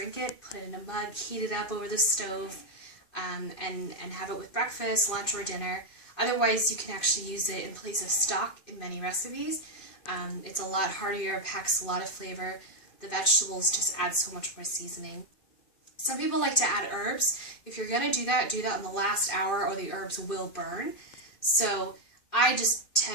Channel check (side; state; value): right; late; 2.5 ms